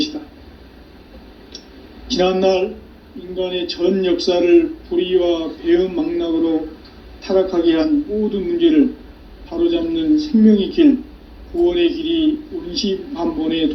지난날 인간의 전 역사를 불의와 배응, 망락으로 타락하게 한 모든 문제를 바로잡는 생명의 길, 구원의 길이 운시반본의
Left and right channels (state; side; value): identical; both; correlation 1.00